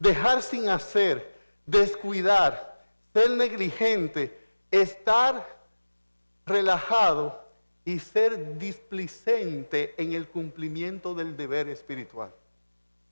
sin hacer, descuidar, ser negligente, estar relajado y ser displicente en el cumplimiento del deber espiritual.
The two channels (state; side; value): inverted; both; correlation -1.00